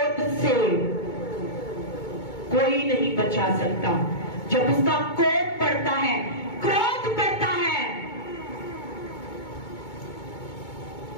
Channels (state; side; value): late; right; 2.2 ms